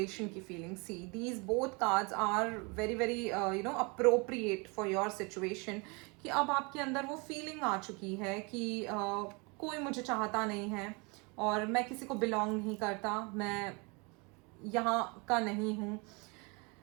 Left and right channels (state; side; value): quieter; left; 29.8 dB